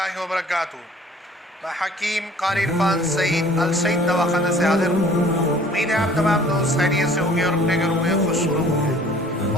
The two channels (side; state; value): both; normal; correlation 0.52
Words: وبرکاتہ۔ میں حکیم قاری عرفان سعید السعید دواخانہ سے حاضر ہوں۔ امید ہے آپ تمام دوست خیریت سے ہوں گے اور اپنے گھروں میں خوش ہوں گے۔